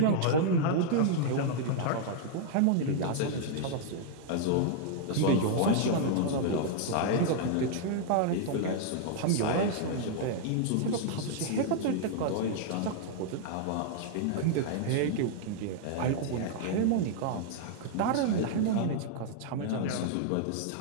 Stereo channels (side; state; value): both; different; correlation 0.00